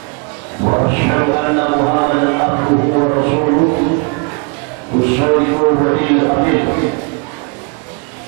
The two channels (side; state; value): left; quieter; 34.9 dB